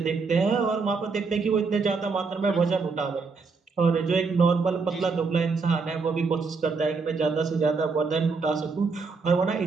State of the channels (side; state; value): left; quieter; 4.5 dB